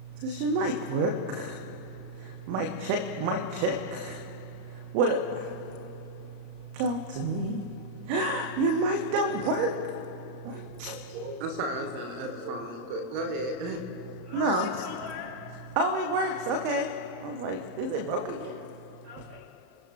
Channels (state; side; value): late; left; 34 ms